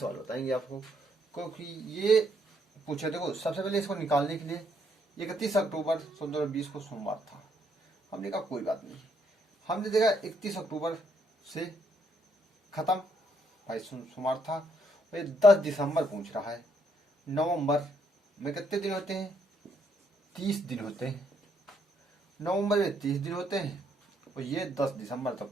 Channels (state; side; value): normal; both; correlation 0.72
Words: बताएंगे आपको। क्योंकि ये पूछे, देखो सबसे पहले इसको निकालने के लिए 31 अक्टूबर 2020 को सोमवार था, हमने कहा कोई बात नहीं। हमने देखा 31 अक्टूबर से खत्म, भाई सोमवार था। ये 10 दिसंबर पूछ रहा है, नवंबर में कितने दिन होते हैं, 30 दिन होते हैं। नवंबर में 30 दिन होते हैं, और ये 10 दिसंबर